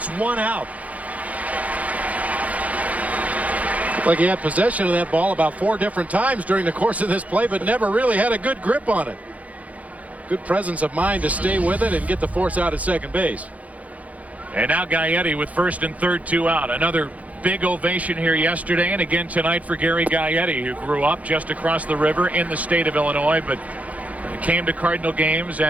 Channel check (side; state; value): left; late; 0.070 ms